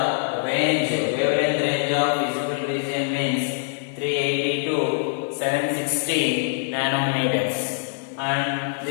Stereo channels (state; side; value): silent; right; digital silence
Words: range, wavelength range of visible region means 380 to 760 nanometers. And